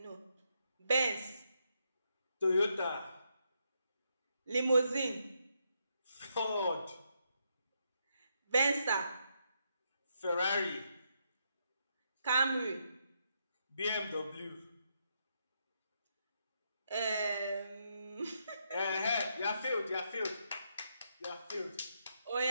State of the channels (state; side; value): inverted; both; correlation -0.79